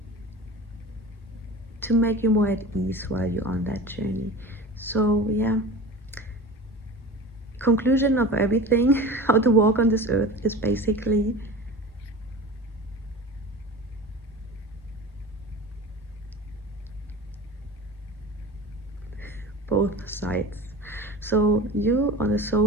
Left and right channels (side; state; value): both; normal; correlation 0.34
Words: to make you more at ease while you're on that journey. So yeah, conclusion of everything, how to walk on this earth, is basically both sides. So you on a